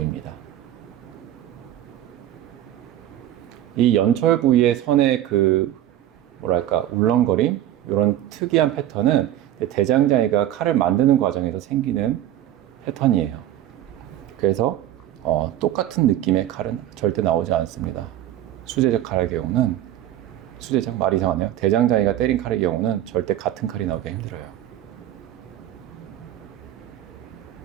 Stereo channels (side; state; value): left; quieter; 12.5 dB